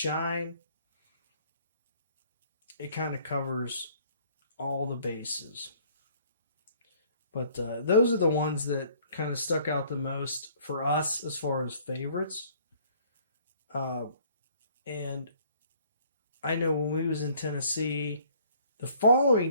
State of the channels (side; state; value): both; inverted; correlation -0.59